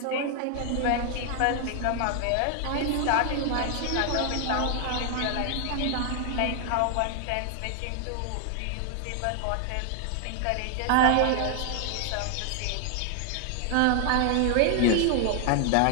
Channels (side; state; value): both; different; correlation 0.00